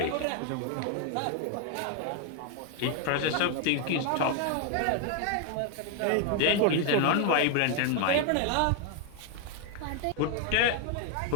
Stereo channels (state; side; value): different; both; correlation 0.01